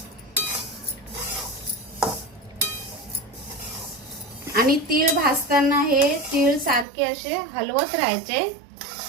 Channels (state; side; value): drops out; left; at 6.9 s